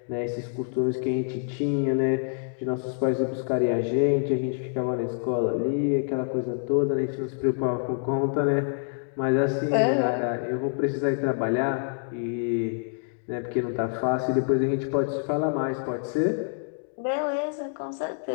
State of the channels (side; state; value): right; silent; 60 dB below the other